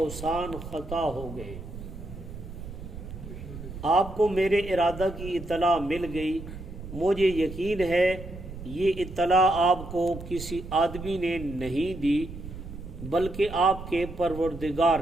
ख़ता हो गए। आपको मेरे इरादा की इत्तला मिल गई। मुझे यकीन है ये इत्तला आपको किसी आदमी ने नहीं दी, बल्कि आपके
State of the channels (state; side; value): noise; right; rumble, 11 dB below the sound